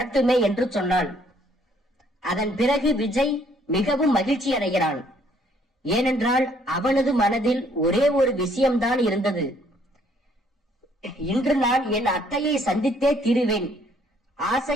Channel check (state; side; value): normal; both; correlation 0.64